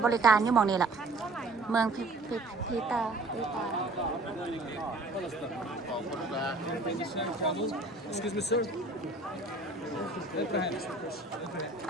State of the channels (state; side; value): quieter; left; 3.1 dB